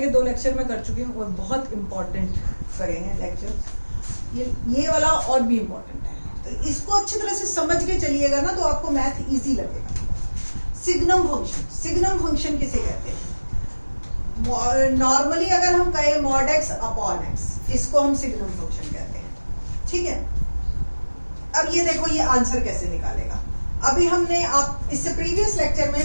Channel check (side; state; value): both; inverted; correlation -1.00